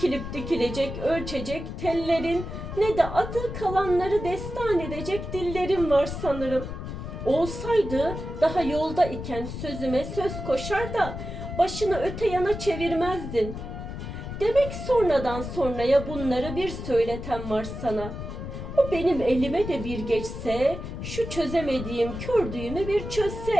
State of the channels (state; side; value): noise; left; rumble, 8 dB below the sound